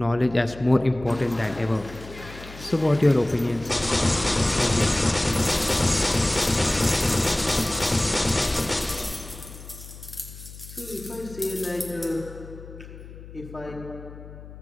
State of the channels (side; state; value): left; noise; hum, 16 dB below the sound